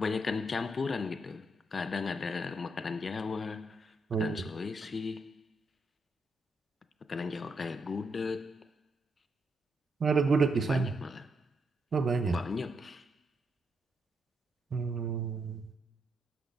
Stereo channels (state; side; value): normal; both; correlation 0.79